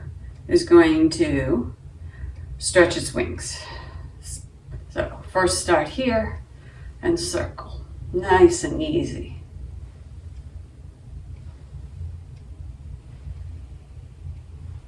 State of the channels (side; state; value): both; identical; correlation 1.00